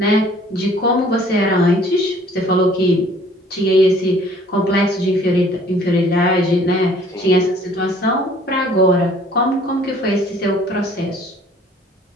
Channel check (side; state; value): both; normal; correlation 0.55